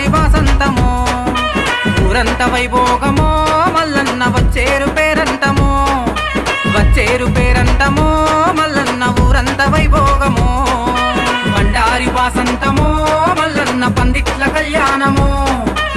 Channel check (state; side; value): identical; both; correlation 1.00